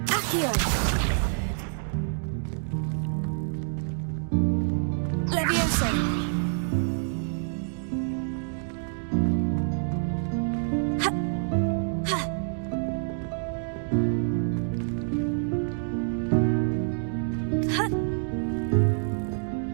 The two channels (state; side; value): silent; left; digital silence